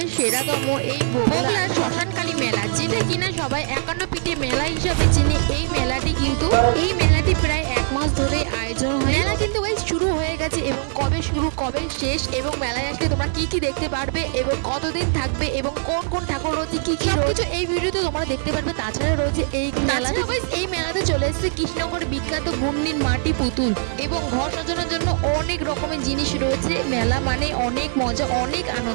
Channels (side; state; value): left; silent; 64 dB below the other